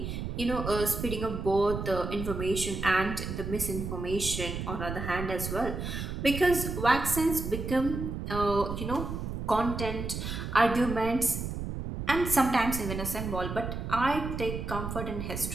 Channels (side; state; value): right; noise; rumble, 5 dB below the sound